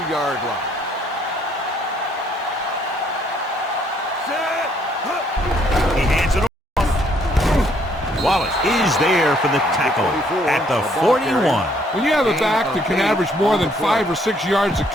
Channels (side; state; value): both; normal; correlation 0.67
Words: line. He hands it off. Wallace is there for the tackle at the 41. When you have a back that can average more than 5 or 6 yards a